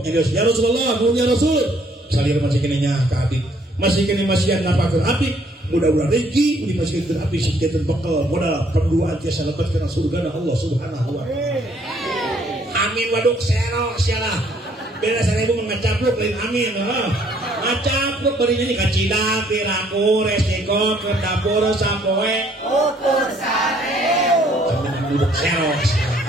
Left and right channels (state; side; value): normal; both; correlation 0.64